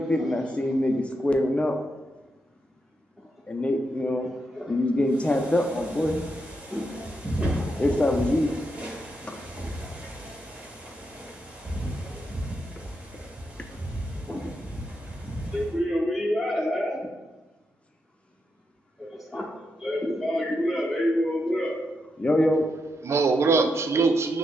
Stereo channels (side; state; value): both; normal; correlation 0.83